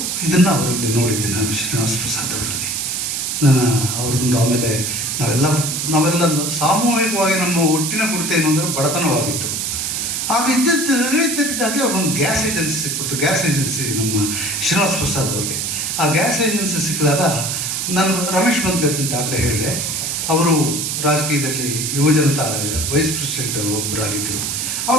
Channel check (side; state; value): right; noise; hiss, 1 dB below the sound